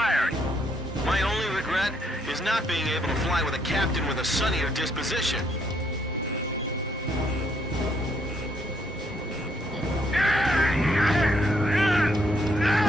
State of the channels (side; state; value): both; normal; correlation 0.71